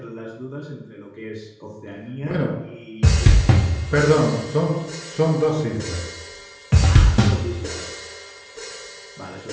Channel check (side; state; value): both; identical; correlation 1.00